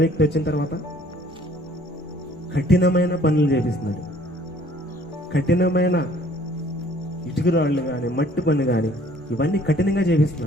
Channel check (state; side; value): normal; both; correlation 0.57